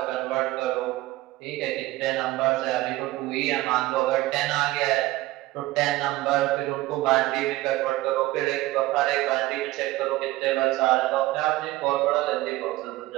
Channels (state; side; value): quieter; left; 17.8 dB